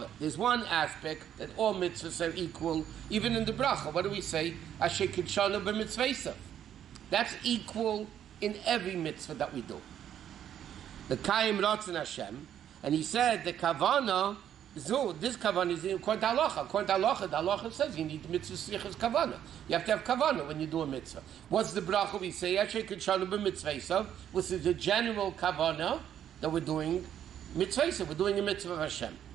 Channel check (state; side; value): quieter; left; 10.1 dB